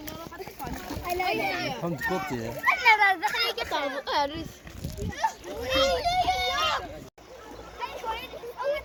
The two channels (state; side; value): identical; both; correlation 1.00